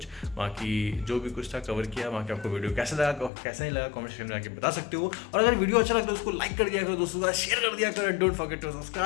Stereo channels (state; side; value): drops out; right; at 3.3 s